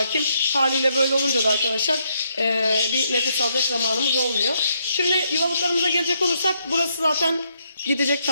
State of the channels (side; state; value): both; inverted; correlation -0.75